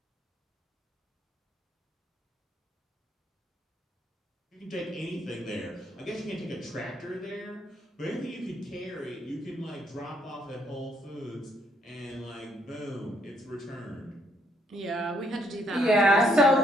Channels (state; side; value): normal; both; correlation 0.71